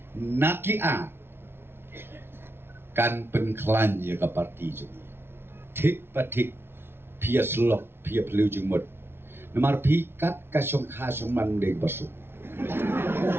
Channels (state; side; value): late; left; 0.11 ms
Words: nakia kan penklan ya ka parti jeng. Tik patik pia slok pia pelu jeng mut. Namar pikat ka syong kha syong man deg basu.